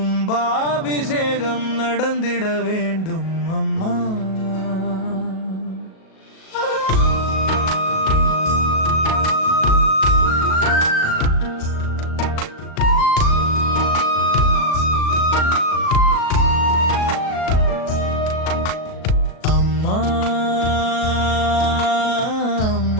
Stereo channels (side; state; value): right; late; 37 ms